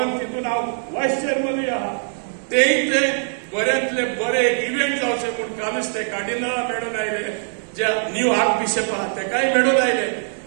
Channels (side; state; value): left; silent; digital silence